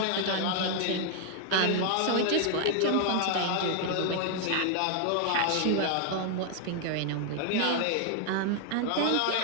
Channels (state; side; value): different; both; correlation 0.00